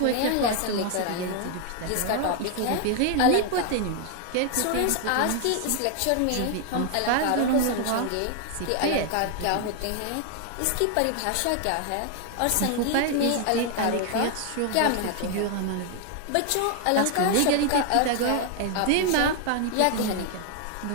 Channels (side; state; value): both; different; correlation 0.00